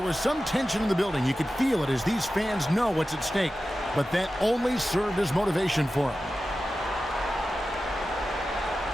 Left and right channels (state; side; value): normal; both; correlation 0.94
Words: was some tension in the building. You could feel it as these fans know what's at stake. But that only served as motivation for him.